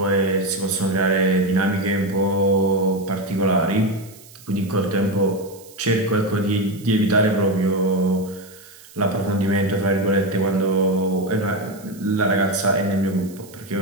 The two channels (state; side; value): noise; right; hiss, 22 dB below the sound